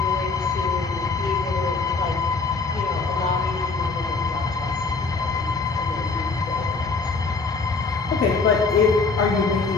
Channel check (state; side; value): quieter; right; 4.3 dB